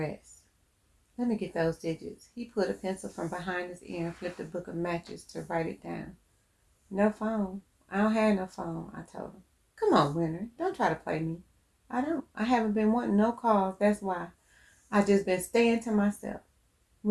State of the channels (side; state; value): both; identical; correlation 1.00